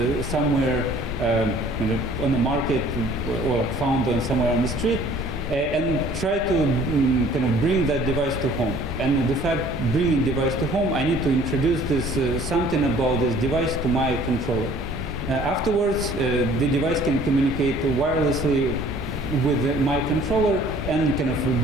somewhere on the market or found somewhere on the street, and try to bring that device to home. And the fact bringing device to home, I need to introduce this something about this device to my controller. Afterwards, the device can communicate wirelessly with my controller and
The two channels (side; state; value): both; normal; correlation 0.53